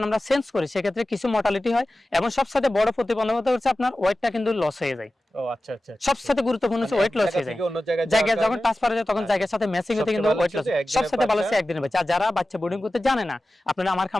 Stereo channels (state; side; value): normal; both; correlation 0.95